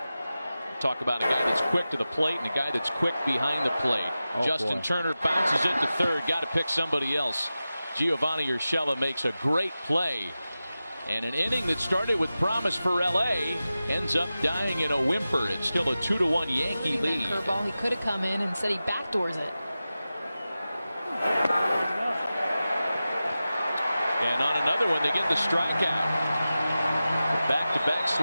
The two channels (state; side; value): inverted; both; correlation -0.94